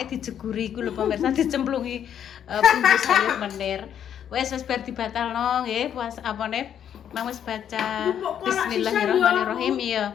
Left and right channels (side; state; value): right; quieter; 9.3 dB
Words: dijeguri iku lho pemirsa, dicemplungi bumbu sayur menir. Wes bar dibatalno nggih puasa apane? Mang wis baca Bismillahirrahmanirrahim